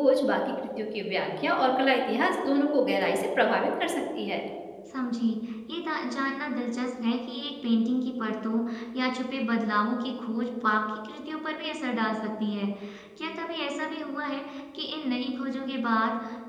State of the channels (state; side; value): identical; both; correlation 1.00